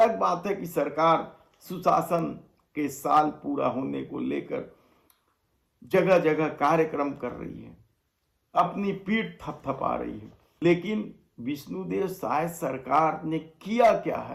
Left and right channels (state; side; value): identical; both; correlation 1.00